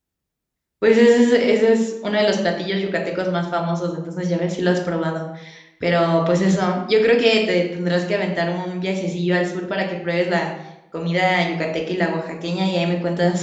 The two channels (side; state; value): both; identical; correlation 1.00